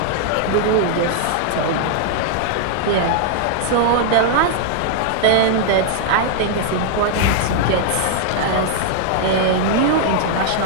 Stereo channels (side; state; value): both; different; correlation -0.01